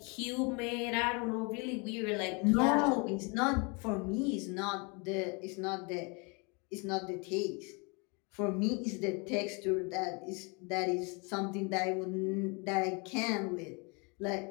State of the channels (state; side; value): quieter; right; 31.6 dB